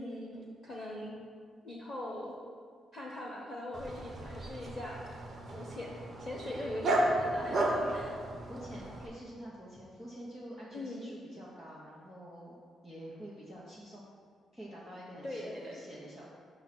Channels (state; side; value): normal; both; correlation 0.77